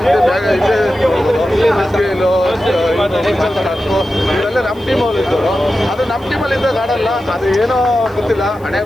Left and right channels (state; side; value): noise; left; hiss, 29 dB below the sound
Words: ಇವರೆಲ್ಲ ನಮ್ಮ ಟೀಮಲ್ಲಿ ಇದ್ದವರು. ಅದು ನಮ್ಮ ಟೀಮಲ್ಲಿ ಇದ್ದಾಗ ಆಡಲ್ಲ, ಅದು ಏನೋ ಗೊತ್ತಿಲ್ಲ, ಹಣೆ